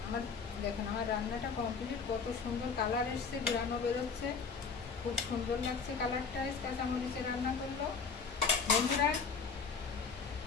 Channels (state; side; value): quieter; right; 5.4 dB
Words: আমার। দেখুন আমার রান্নাটা কমপ্লিট, কত সুন্দর কালার এসছে, ঘুরানো বেরোচ্ছে, খুব সুন্দর লাগছে কালারটা। কাঁচামরিচে রান্না করলো।